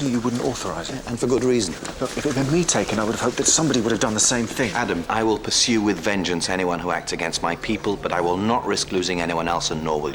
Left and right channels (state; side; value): identical; both; correlation 1.00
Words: knew you wouldn't authorize it. And for good reason. Look, if it had been me taken, I would have hoped that somebody would have done the same thing. Adam, I will pursue with vengeance anyone who acts against my people, but I will not risk losing anyone else, and nor